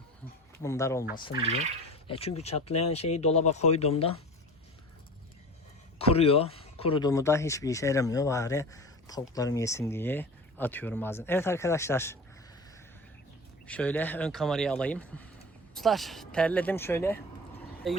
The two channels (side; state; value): both; normal; correlation 0.35